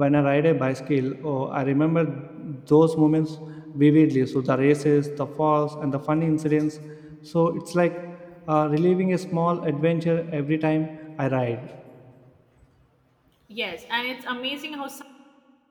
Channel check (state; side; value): identical; both; correlation 1.00